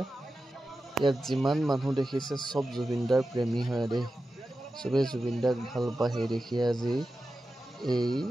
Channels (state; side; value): normal; both; correlation 0.92